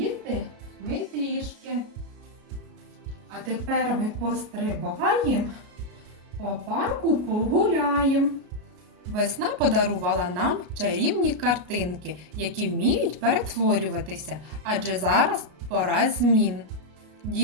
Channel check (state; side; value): late; left; 33 ms